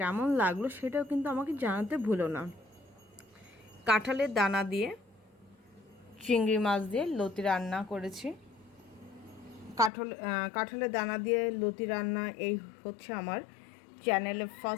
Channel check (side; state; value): right; drops out; at 9.9 s